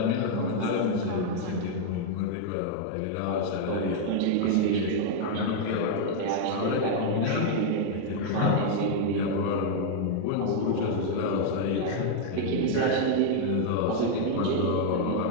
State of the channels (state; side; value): different; both; correlation 0.00